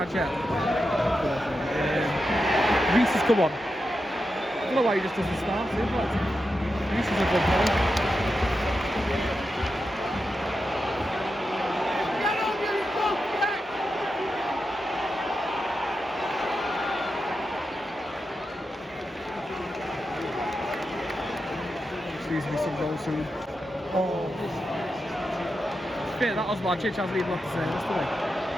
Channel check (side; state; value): both; normal; correlation 0.89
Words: yet? Reese has come on. I don't know why he just doesn't start him, but Reese is a good player. Excuse me, some goals soon. Oh, that was my Chich hasn't even got to say this today.